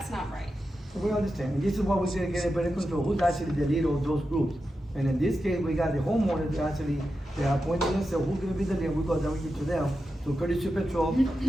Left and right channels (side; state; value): both; normal; correlation 0.90